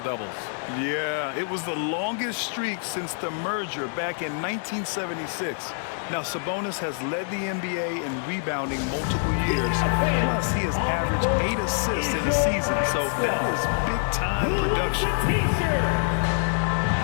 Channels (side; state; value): right; silent; 61 dB below the other